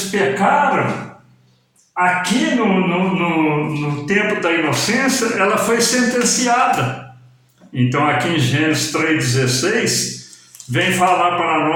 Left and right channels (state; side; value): identical; both; correlation 1.00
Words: pecaram, aqui no tempo da inocência, ela foi sentenciada. Então aqui em Gênesis 3,16, vem falar para